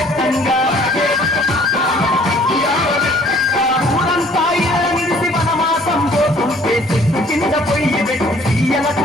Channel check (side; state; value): both; normal; correlation 0.57